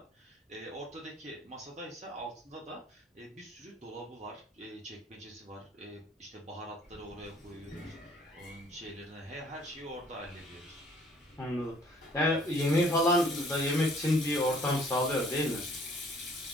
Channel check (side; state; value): both; normal; correlation 0.58